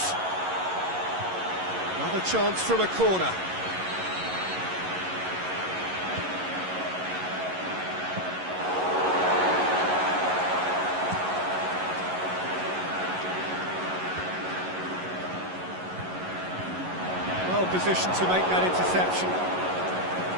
Another chance from a corner. Well positioned to make that interception.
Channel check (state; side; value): late; left; 11 ms